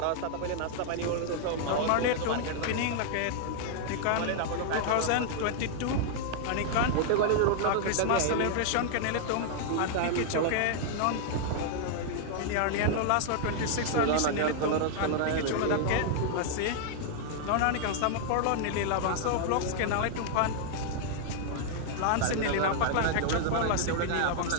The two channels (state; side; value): different; both; correlation 0.00